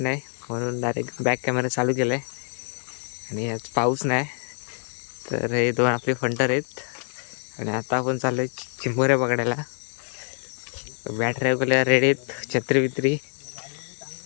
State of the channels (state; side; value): silent; right; 61 dB below the other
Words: नाही म्हणून डायरेक्ट बॅक कॅमेरा चालू केला आहे. आणि आज पाऊस नाही तर हे दोन आपले फंटर आहेत आणि आता आपण चाललो आहे चिंबोऱ्या पकडायला. बॅटऱ्या वगैरे रेडी आहेत, छत्री बित्री